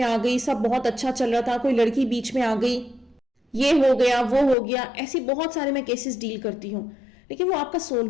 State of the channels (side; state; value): right; drops out; at 4.5 s